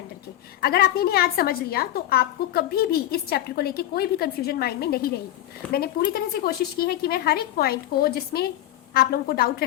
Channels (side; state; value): right; quieter; 13.4 dB